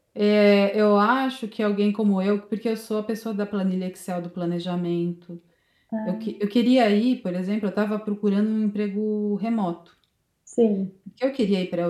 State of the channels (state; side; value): identical; both; correlation 1.00